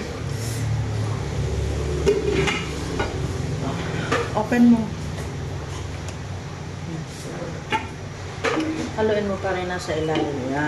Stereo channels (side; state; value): both; identical; correlation 1.00